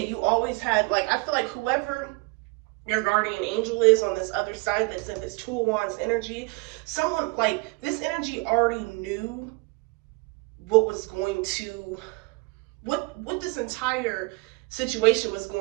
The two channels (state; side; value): quieter; left; 26.9 dB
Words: you always had, like, I feel like whoever your guardian angel is on this other side that's in this Two of Wands energy, someone, like, this energy already knew what was going to, what this entire situation was